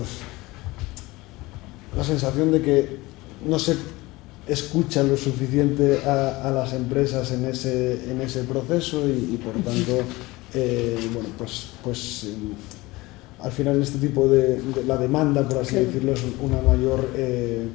la sensación de que no se escucha lo suficiente a las empresas en ese proceso y por tanto, bueno, pues al final este tipo de la demanda, por así decirlo, es una mayor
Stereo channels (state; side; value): quieter; right; 20.9 dB